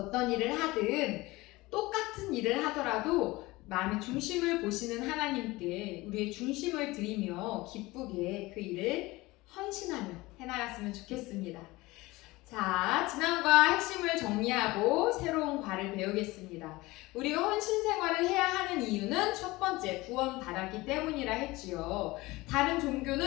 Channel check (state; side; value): quieter; right; 20.8 dB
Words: 일을 하든 똑같은 일을 하더라도 마음의 중심을 보시는 하나님께 우리의 중심을 드리며 기쁘게 그 일을 헌신하며 해나갔으면 좋겠습니다. 자, 지난과 핵심을 정리하고 새로운 과를 배우겠습니다. 우리가 헌신 생활을 해야 하는 이유는 첫 번째, 구원 받았기 때문이라 했지요. 다른